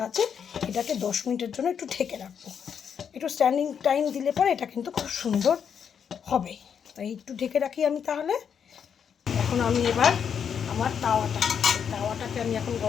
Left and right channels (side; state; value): right; quieter; 7.5 dB